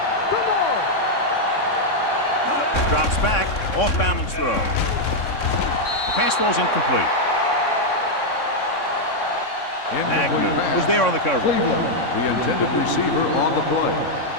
Drops back, off balance throw. The pass falls incomplete. Agnew was there on the cover. Cleveland, the intended receiver on the play.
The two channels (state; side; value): late; right; 3.6 ms